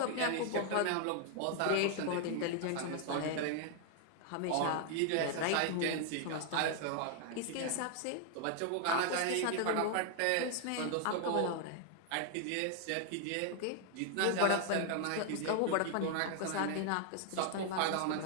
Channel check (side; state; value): both; different; correlation 0.00